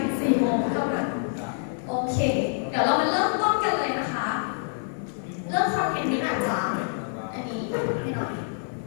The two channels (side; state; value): right; silent; digital silence